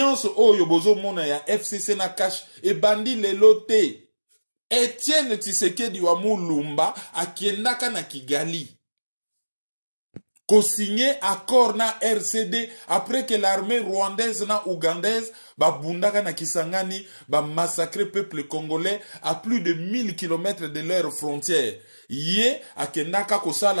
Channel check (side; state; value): both; inverted; correlation -1.00